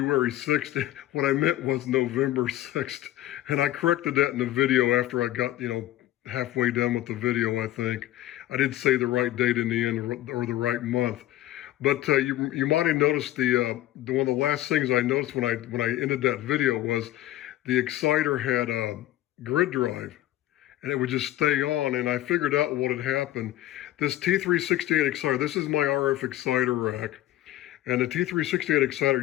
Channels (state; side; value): quieter; right; 14.5 dB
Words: 6th? What I meant was November 6th. And I corrected that in the video after I got, halfway done with the video, I think. I did say the right date in the end, or the right month. But you might have noticed one of the last things I noticed when I ended that video was the exciter had a grid drive. And it would just stay on, and I figured out what had happened. This T368 exciter, this is my RF exciter rack, and the T368 exciter,